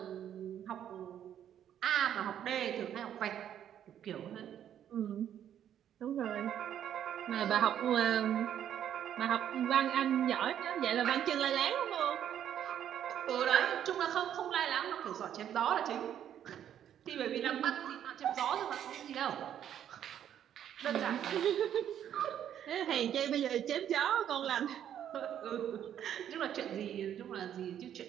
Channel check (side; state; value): left; quieter; 10.0 dB